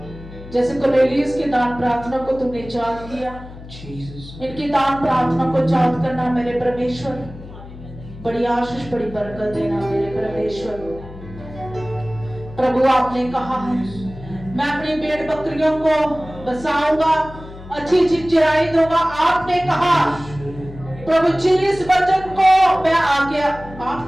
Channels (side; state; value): left; noise; hum, 15 dB below the sound